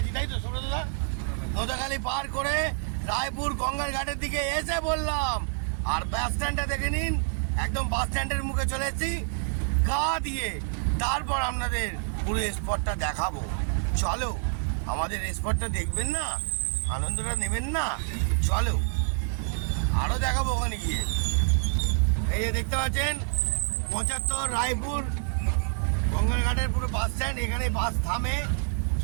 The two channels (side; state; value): left; silent; digital silence